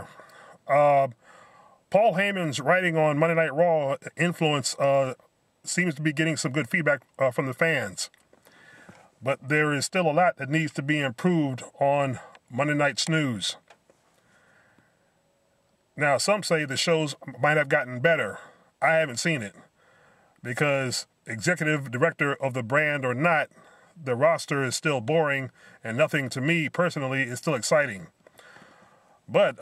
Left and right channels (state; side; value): identical; both; correlation 1.00